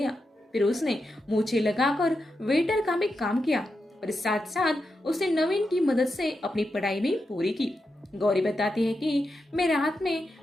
फिर उसने मूछें लगाकर वेटर का भी काम किया और साथ साथ उसने नवीन की मदद से अपनी पढ़ाई भी पूरी की। गौरी बताती है कि मैं रात में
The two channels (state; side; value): normal; both; correlation 0.87